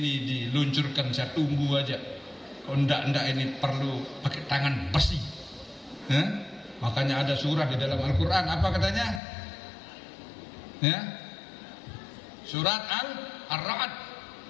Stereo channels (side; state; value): right; drops out; at 9.2 s